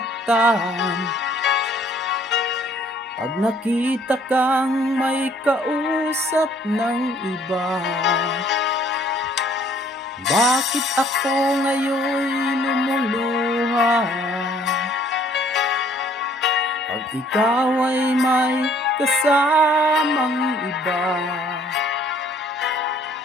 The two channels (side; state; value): both; normal; correlation 0.59